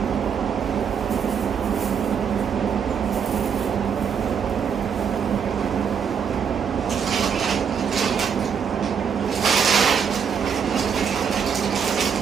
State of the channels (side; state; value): left; quieter; 7.0 dB